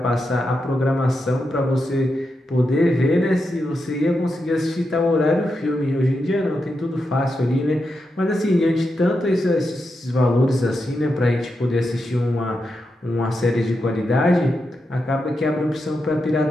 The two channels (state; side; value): normal; both; correlation 0.86